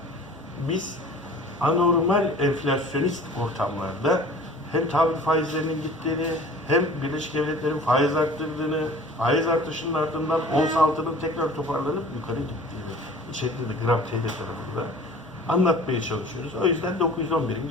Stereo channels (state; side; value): normal; both; correlation 0.45